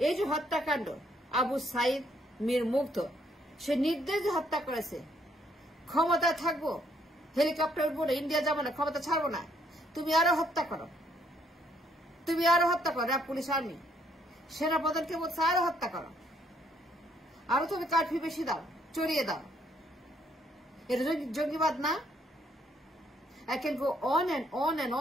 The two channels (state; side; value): normal; both; correlation 0.69